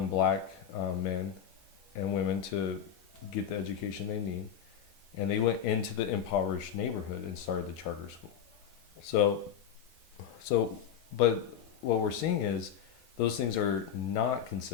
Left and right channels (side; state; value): right; quieter; 8.7 dB